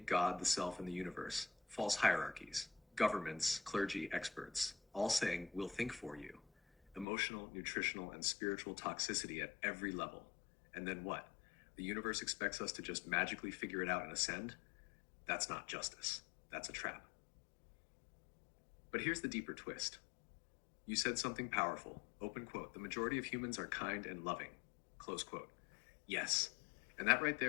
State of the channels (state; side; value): drops out; right; at 7.1 s